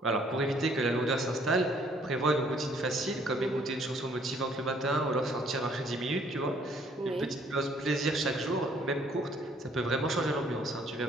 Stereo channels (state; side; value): normal; both; correlation 0.62